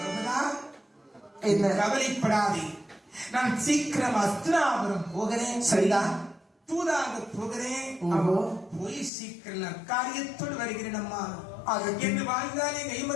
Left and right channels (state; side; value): drops out; right; at 9.1 s